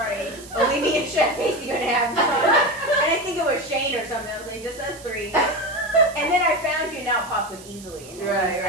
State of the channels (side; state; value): right; noise; hiss, 19 dB below the sound